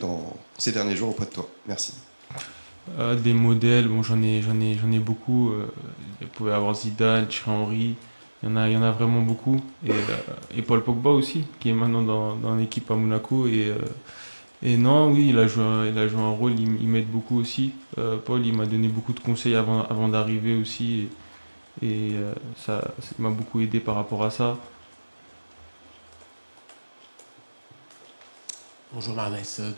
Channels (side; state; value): both; inverted; correlation -1.00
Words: ces derniers jours auprès de toi? Merci. Des modèles, bon, j'en ai beaucoup. Il pouvait y avoir Zidane, Thierry Henry. Il y en a vraiment beaucoup. Et Paul Pogba aussi, qui est maintenant dans l'équipe à Monaco. Et non, oui, il a joué un rôle, il m'aide beaucoup aussi. Paul, il m'a donné beaucoup de conseils avant d'arriver aussi. Ça m'a beaucoup aidé par rapport à ça. Bonjour Marnès,